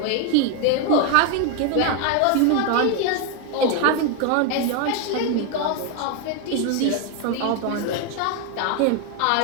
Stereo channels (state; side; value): different; both; correlation 0.01